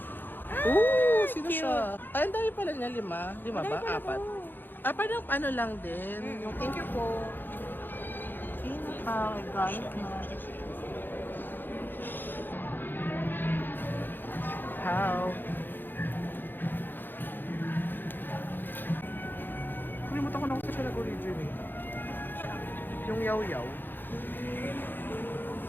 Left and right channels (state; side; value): late; right; 0.094 ms